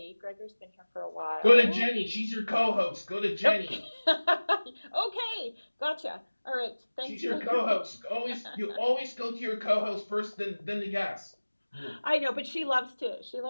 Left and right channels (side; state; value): both; inverted; correlation -1.00